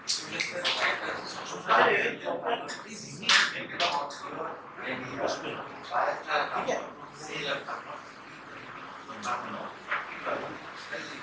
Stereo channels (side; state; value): both; identical; correlation 1.00